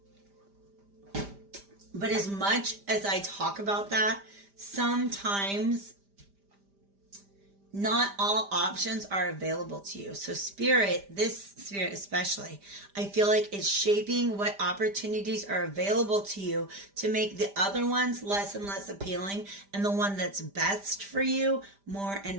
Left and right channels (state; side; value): late; left; 5.0 ms